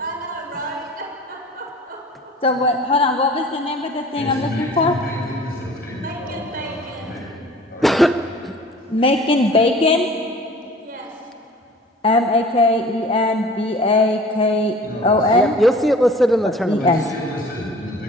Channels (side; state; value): both; normal; correlation 0.46